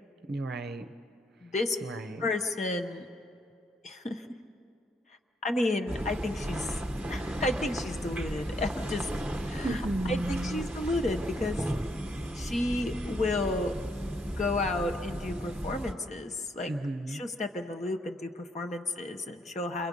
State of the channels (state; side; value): normal; both; correlation 0.74